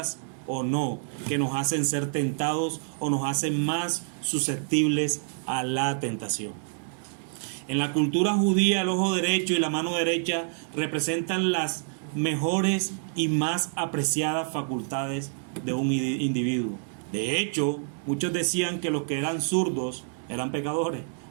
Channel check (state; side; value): silent; left; digital silence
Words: o no, que nos hacen ser tentados o nos hacen más susceptibles a la tentación. En la cultura judía, el ojo derecho y la mano derecha representan las mejores y más apreciadas facultades de un individuo. De hecho, muchos decían que los que eran zurdos eran pecadores.